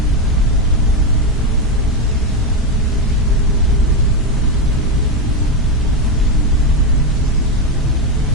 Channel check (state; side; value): normal; both; correlation 0.09